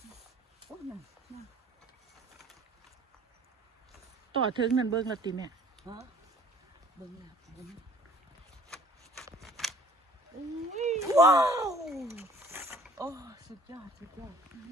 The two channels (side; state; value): both; normal; correlation 0.53